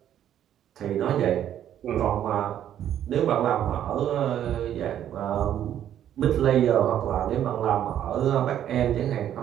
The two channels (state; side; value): quieter; left; 10.7 dB